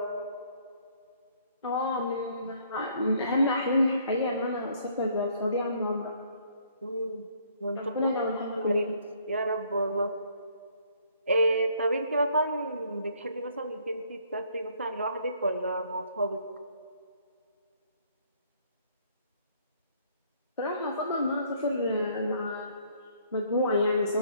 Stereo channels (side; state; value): both; inverted; correlation -0.64